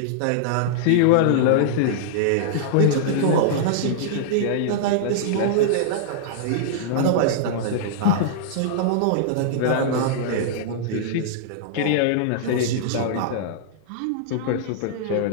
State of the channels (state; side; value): different; both; correlation -0.02